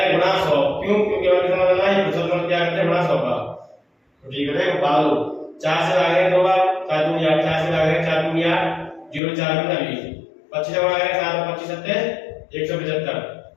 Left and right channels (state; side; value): drops out; right; at 9.2 s